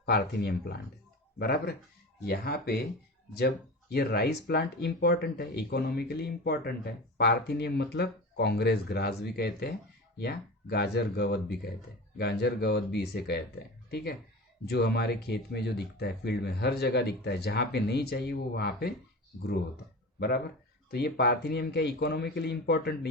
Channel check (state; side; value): normal; both; correlation 0.30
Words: पार्थेनियम प्लांट है बराबर। यहाँ पे जब ये राइस प्लांट इंपॉर्टेंट है, इकोनॉमिकली इंपॉर्टेंट है, पार्थेनियम मतलब कांग्रेस ग्रास भी कहते हैं या गाजर गवत भी कहते हैं, गाजर गवत भी इसे कहते हैं, ठीक है। जो हमारे खेत में जो दिखता है, फील्ड में हर जगह दिखता है, जहाँ पे नहीं चाहिए वो वहाँ पे ग्रो होता है बराबर। तो ये पार्थेनियम क्या इकोनॉमिकली इंपॉर्टेंट